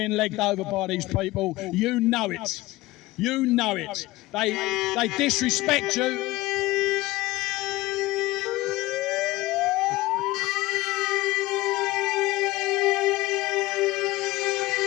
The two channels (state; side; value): quieter; right; 19.0 dB